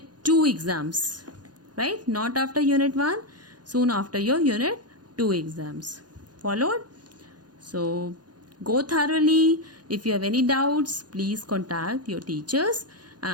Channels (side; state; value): left; late; 0.69 ms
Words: 2 exams, right? Not after unit 1, soon after your unit 2 exams. Followed? So go thoroughly. If you have any doubts, please contact your teachers,